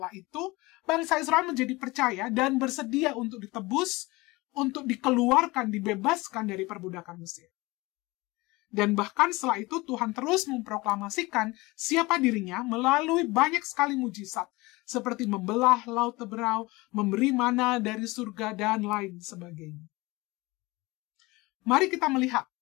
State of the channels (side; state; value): right; quieter; 22.4 dB